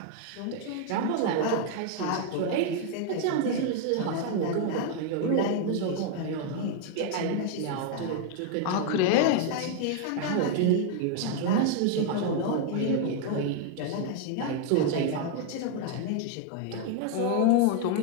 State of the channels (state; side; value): different; both; correlation 0.00